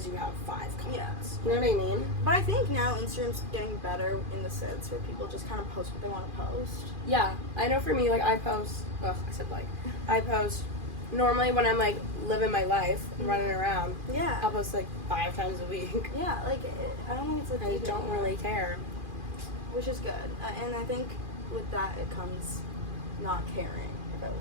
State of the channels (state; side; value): late; left; 2.4 ms